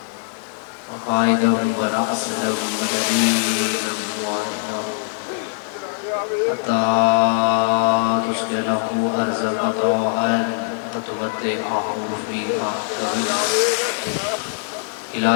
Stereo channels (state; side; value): silent; right; digital silence